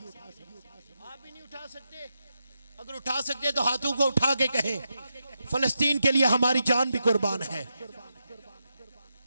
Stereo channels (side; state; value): both; inverted; correlation -0.86